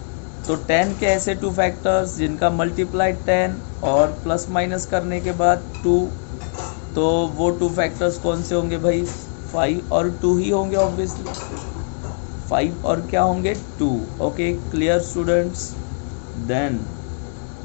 तो 10 के ऐसे 2 फैक्टर्स जिनका मल्टीप्लाई 10 और प्लस माइनस करने के बाद 2, तो वो 2 फैक्टर्स कौन से होंगे भाई, 5 और 2 ही होंगे ऑब्वियसली। 5 और क्या होंगे, 2। Okay, clear students. देन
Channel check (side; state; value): right; silent; digital silence